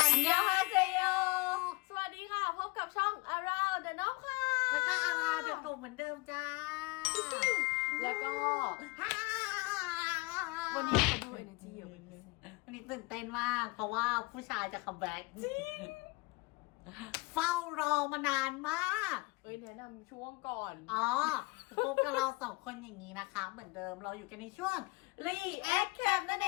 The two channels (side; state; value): right; quieter; 25.6 dB